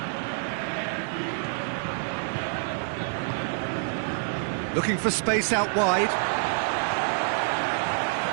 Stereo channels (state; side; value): silent; left; digital silence